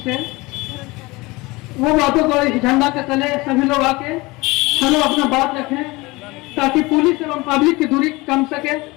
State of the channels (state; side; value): quieter; right; 22.8 dB